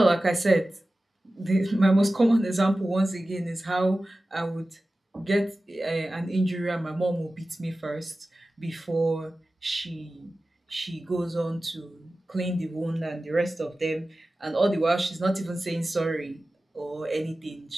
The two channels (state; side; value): normal; both; correlation 0.95